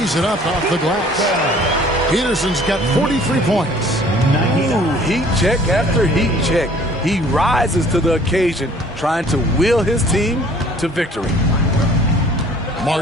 it up off the glass. Peterson's got 43 points. Ooh, heat check after heat check. He rises to the occasion, trying to will his team to victory.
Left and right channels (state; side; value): normal; both; correlation 0.53